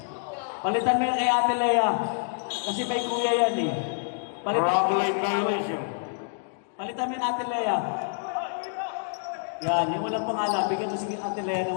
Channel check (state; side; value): silent; right; digital silence